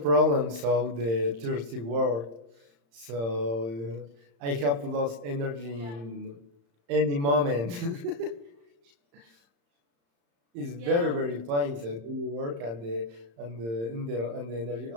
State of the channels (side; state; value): left; late; 35 ms